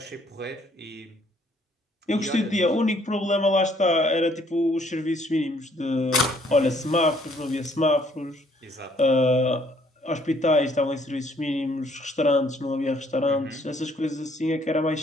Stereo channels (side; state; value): both; normal; correlation 0.64